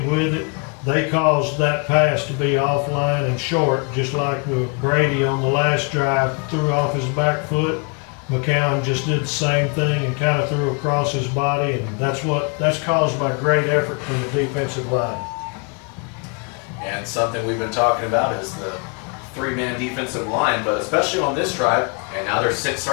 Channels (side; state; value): right; quieter; 34.2 dB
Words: with it. They caused that pass to be offline and short, just like with Brady on the last drive, threw off his back foot. McCown just did the same thing and kind of threw across his body, and that's caused by great effort from the defensive line. And something we've been talking about is the three-man defensive line, but especially on this drive, and now they're